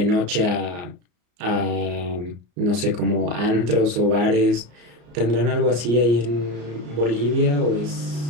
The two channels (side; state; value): left; late; 34 ms